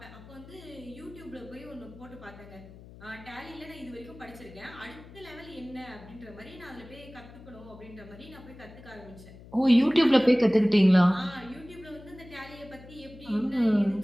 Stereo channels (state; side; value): noise; left; hum, 19 dB below the sound